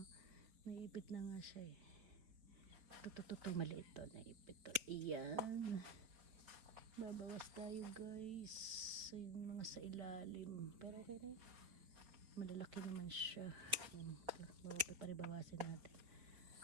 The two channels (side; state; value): left; late; 4.4 ms